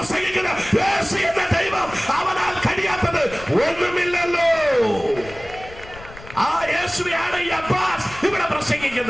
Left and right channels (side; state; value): left; noise; rumble, 18 dB below the sound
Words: യേശു എന്ന ദൈവം, അവനാൽ കഴിയാത്തത് ഒന്നുമില്ലല്ലോ. ആ യേശുവാണ് ഈ അബ്ബാസ് ഇവിടെ